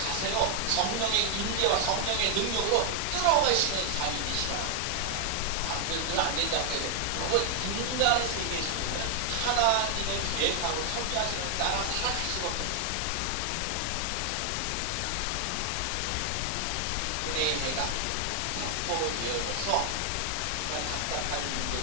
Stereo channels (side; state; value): both; different; correlation 0.00